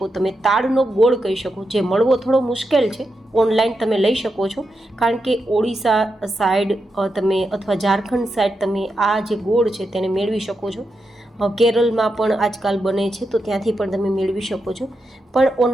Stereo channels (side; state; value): both; normal; correlation 0.86